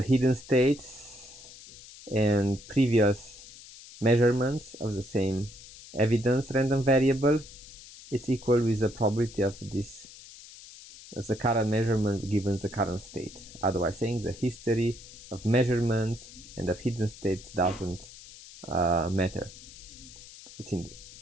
hidden states and previous measurements of the same evidence random variable is equal with the probability of this as the current measurement given the current state. Otherwise saying, the history of measurements and of hidden states doesn't matter.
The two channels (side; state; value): left; noise; hiss, 18 dB below the sound